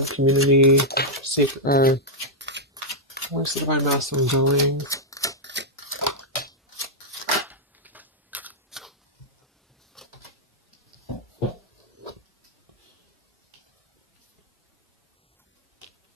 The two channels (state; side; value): normal; both; correlation -0.05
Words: Community, Sacred, where's the Divine Masculine going?